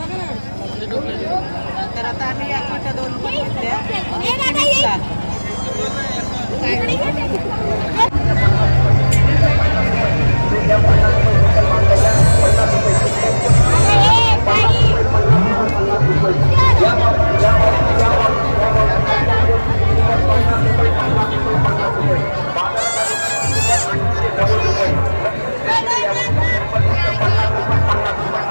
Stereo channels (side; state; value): both; inverted; correlation -1.00